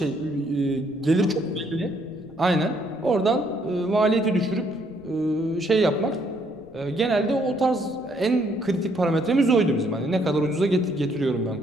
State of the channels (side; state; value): left; noise; rumble, 29 dB below the sound